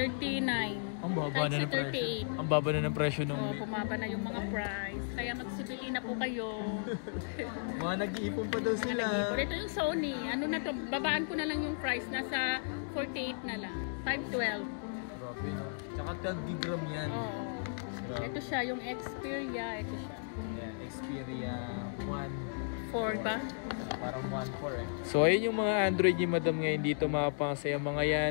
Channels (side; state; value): right; silent; digital silence